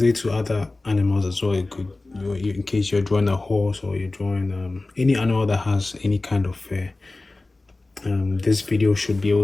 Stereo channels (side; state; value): right; quieter; 3.1 dB